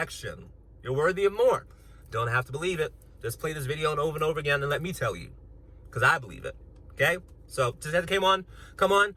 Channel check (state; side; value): identical; both; correlation 1.00